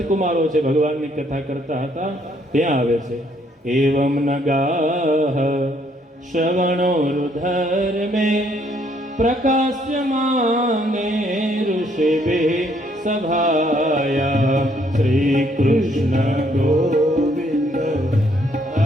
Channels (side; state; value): both; normal; correlation 0.68